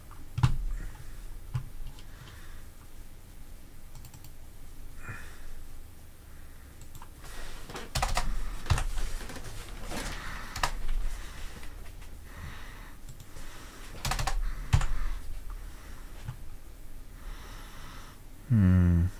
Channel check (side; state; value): both; identical; correlation 1.00